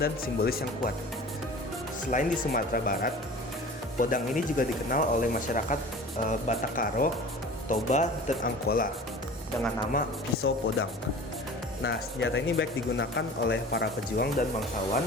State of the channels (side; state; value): both; normal; correlation 0.41